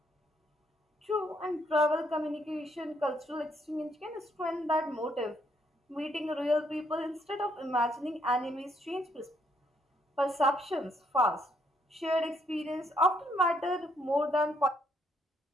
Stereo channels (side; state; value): both; normal; correlation 0.72